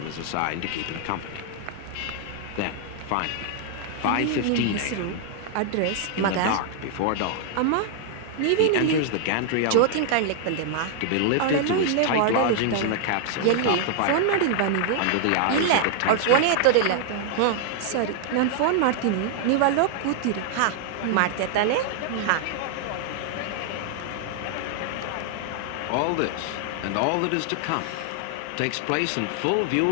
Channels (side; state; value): both; different; correlation -0.01